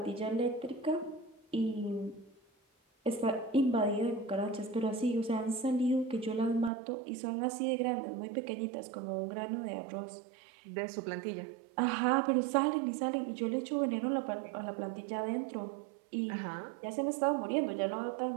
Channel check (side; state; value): left; drops out; at 6.7 s